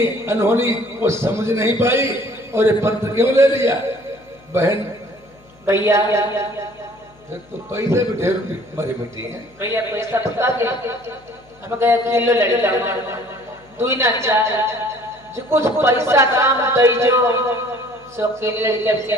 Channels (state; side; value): noise; left; hum, 28 dB below the sound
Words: अनहोनी वो समझ नहीं पाई और ये पत्र क्यों ले लिया बहन? भैया फिर तो पैसे भी ढेर मरी मिट्टी है। भैया पैसा बता दे, हम गए किलो लड़का दुई ना चार जो कुछ पैसा काम दई जो सो किलो लड़का के